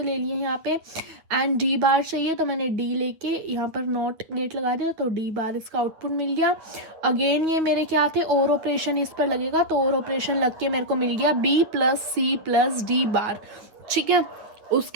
ले लिए यहाँ पे। एंड डी बार चाहिए, तो मैंने डी लेके यहाँ पर नॉट गेट लगा दिया, तो डी बार इसका आउटपुट मिल गया। अगेन ये मेरे क्या थे, और ऑपरेशन इस पर लगेगा, तो और ऑपरेशन लग के मेरे को मिल गया B plus C plus D bar, ठीक है।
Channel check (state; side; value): late; left; 9.5 ms